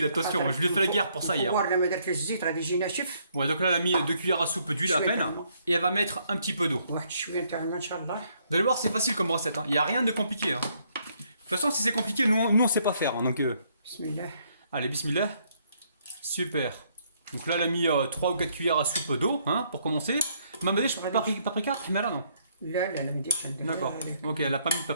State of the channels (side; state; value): both; inverted; correlation -0.70